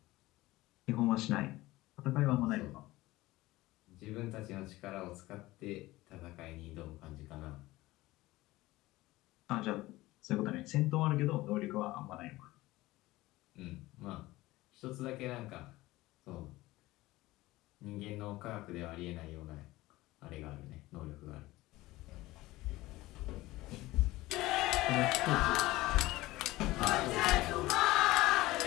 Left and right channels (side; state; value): right; quieter; 18.5 dB